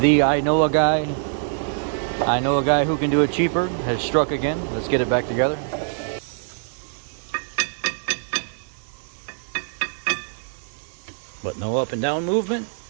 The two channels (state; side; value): silent; left; digital silence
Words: I know a guy who can do it cheaper has struck again. Let's get it back together. But no up and down movement,